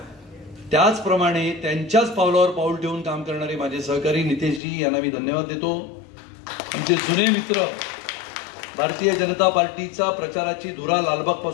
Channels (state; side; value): drops out; right; at 4.6 s